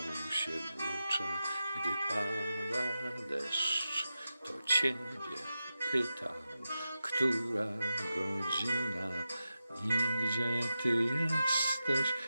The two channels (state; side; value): inverted; both; correlation -0.91